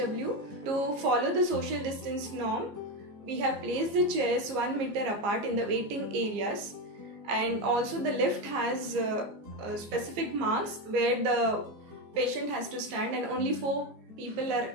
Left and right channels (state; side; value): late; left; 15 ms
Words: To follow the social distance norm, we have placed the chairs 1 meter apart in the waiting areas, and also the lift has specific marks where the patient has to stand, and only 4 people are